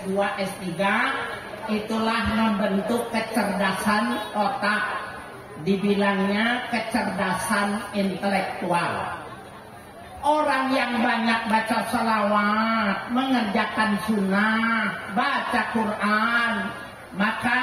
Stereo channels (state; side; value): identical; both; correlation 1.00